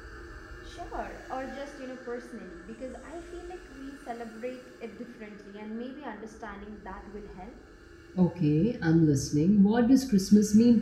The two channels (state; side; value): identical; both; correlation 1.00